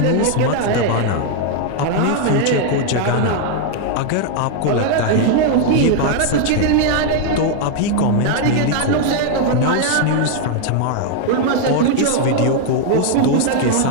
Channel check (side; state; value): both; different; correlation 0.00